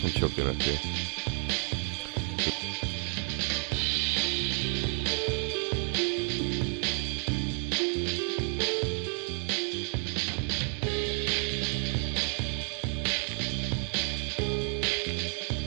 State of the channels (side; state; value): left; quieter; 38.1 dB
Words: choking up here. Oh, God. Somebody get this man a tissue.